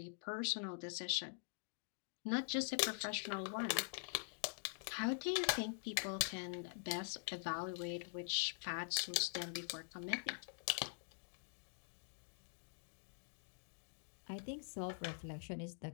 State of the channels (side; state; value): right; silent; digital silence